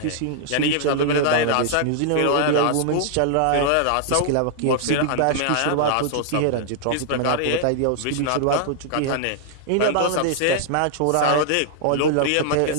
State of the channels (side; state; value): both; different; correlation -0.01